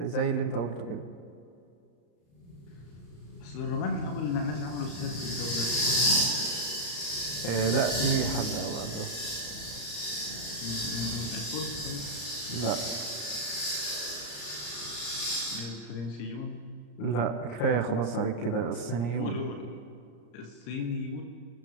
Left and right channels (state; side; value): late; right; 34 ms